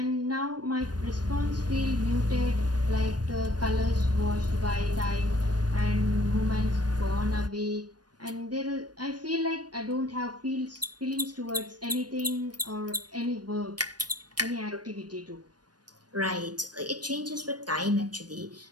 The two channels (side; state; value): left; late; 0.69 ms